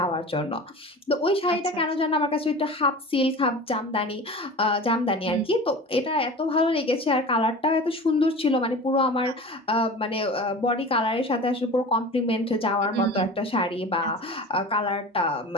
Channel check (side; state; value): both; normal; correlation 0.36